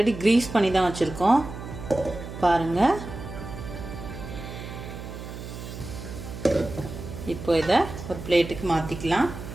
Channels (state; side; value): noise; right; hum, 10 dB below the sound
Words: க்ரீஸ் பண்ணி தான் வச்சுருக்கோம். பாருங்கள், இப்போ இதை ஒரு பிளேட்டுக்கு மாற்றிக்கலாம்.